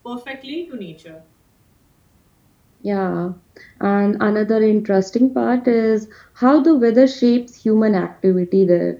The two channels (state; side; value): identical; both; correlation 1.00